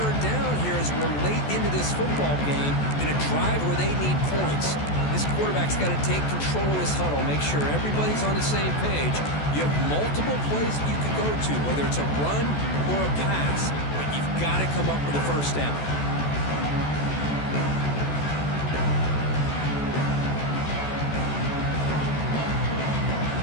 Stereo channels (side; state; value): right; late; 14 ms